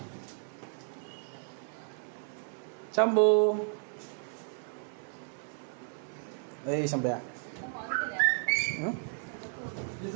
शंभू ए शंभ्या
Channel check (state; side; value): silent; left; 56 dB below the other